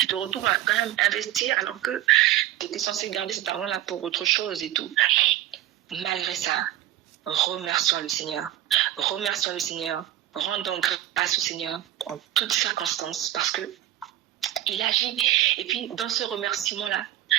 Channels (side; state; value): left; quieter; 13.5 dB